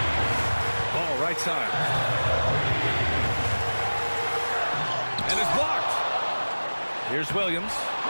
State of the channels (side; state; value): both; inverted; correlation -1.00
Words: Ball right side. And it's blocked. Here's Williams.